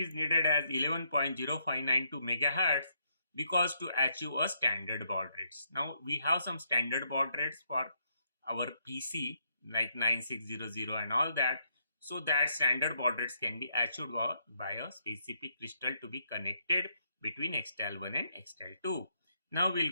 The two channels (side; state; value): both; inverted; correlation -0.74